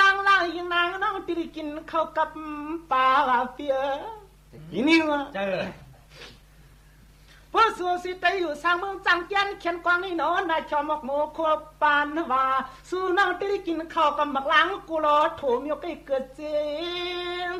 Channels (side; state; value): both; identical; correlation 1.00